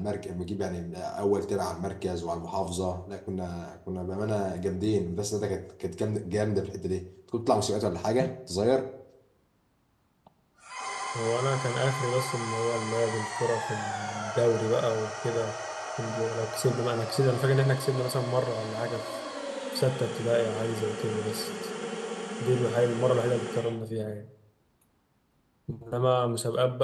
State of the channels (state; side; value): identical; both; correlation 1.00